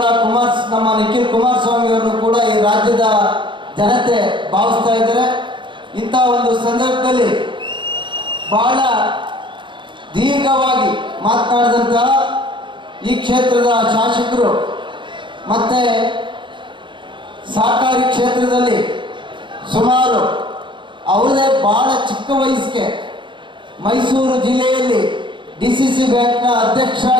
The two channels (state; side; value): late; left; 0.23 ms